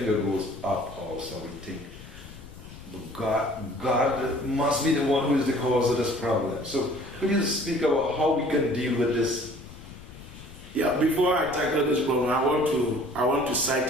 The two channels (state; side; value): noise; left; rumble, 17 dB below the sound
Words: goes up also. We think, God must be the one who is the cause of this problem. So could you speak about how we can deal with this? Yeah, before I tackle this problem, I want to